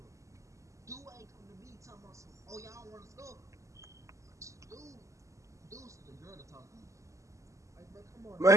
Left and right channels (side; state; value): left; late; 0.15 ms